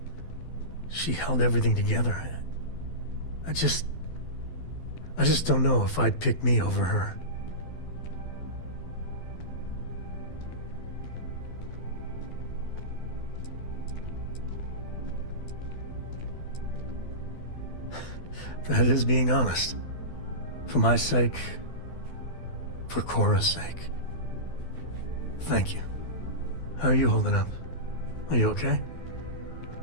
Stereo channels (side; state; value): right; late; 12 ms